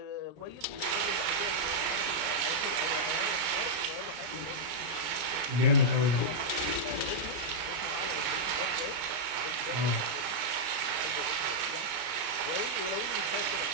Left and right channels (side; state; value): left; late; 34 ms